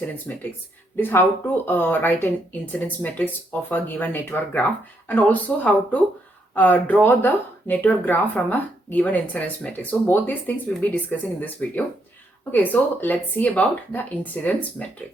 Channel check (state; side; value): normal; both; correlation 0.76